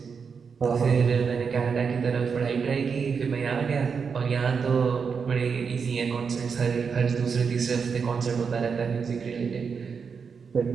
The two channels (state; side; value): quieter; left; 5.9 dB